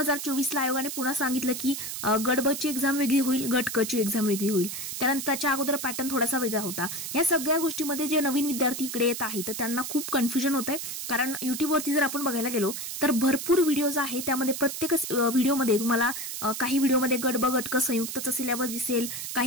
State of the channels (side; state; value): right; noise; hiss, 6 dB below the sound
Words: ला आयोगाने पुन्हा सांगितलं की गट ब ची एक्झाम वेगळी होईल, गट क ची एक्झाम वेगळी होईल। त्यानंतर त्याच्या अगोदर पॅटर्न थोडासा वेगळा होता। या सगळ्या गोष्टीमध्ये जे नवीन विद्यार्थी इकडे येत आहेत तर त्यांना खूप कन्फ्युजन होत आहे, कारण युट्यूबवरती जर आपण बघायला गेलो तर भरपूर व्हिडिओज आहेत, त्यामध्ये प्रत्येक व्हिडिओमध्ये तुम्हाला काही व्हिडिओमध्ये गट ब गट क संयुक्तचा सिलेबस दिसेल,